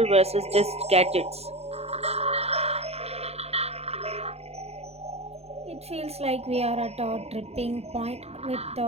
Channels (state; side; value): late; left; 0.30 ms